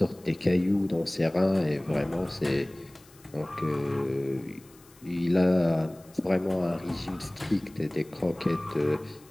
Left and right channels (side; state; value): left; noise; hiss, 26 dB below the sound